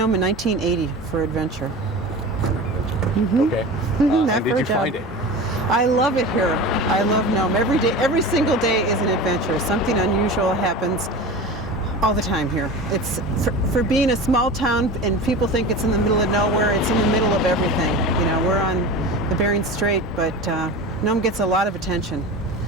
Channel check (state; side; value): normal; both; correlation 0.31